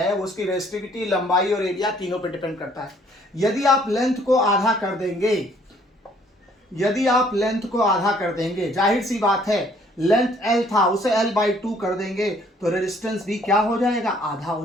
उसकी रेजिस्टिविटी, लंबाई और एरिया तीनों पे डिपेंड करता है। यदि आप लेंथ को आधा कर देंगे, यदि आप लेंथ को आधा कर देंगे, जाहिर सी बात है लेंथ L था उसे L/2 कर देंगे तो रेजिस्टेंस भी क्या हो जाएगा, आधा हो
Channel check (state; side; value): normal; both; correlation 0.62